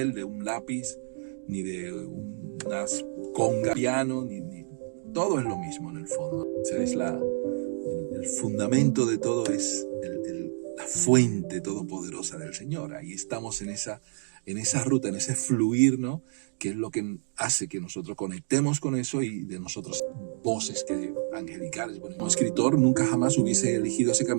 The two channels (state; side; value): silent; left; digital silence